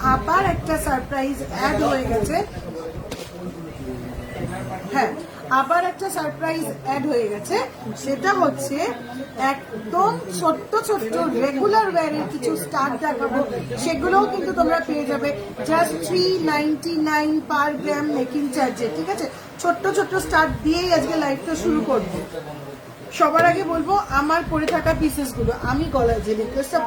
আবার একটা সারপ্রাইজ অ্যাড হয়ে গেছে। হ্যাঁ, আবার একটা সারপ্রাইজ অ্যাড হয়ে গেছে, সেটা হচ্ছে একদম ছোট্ট ছোট্ট রেগুলার ওয়্যারের কিছু স্টার দেখাবো, সেগুলোও কিন্তু তোমরা পেয়ে যাবে জাস্ট 399 পার গ্রাম মেকিং চার্জে, ঠিক আছে? ছোট্ট ছোট্ট স্টার দিয়েই আজকে লাইভটা শুরু করব। সবার আগে বলবো আমার পরে থাকা পিসেস গুলো, আমি গলায় যে নেকলেসটা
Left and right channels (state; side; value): identical; both; correlation 1.00